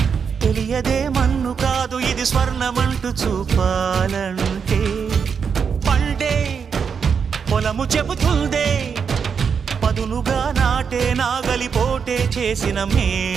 తెలియదే మన్ను కాదు ఇది స్వర్ణమంటూ చూపాలంటే పండే పొలము చెబుతుందే పదునుగా నాటే నాగలిపోటే చేసిన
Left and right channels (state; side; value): quieter; left; 6.4 dB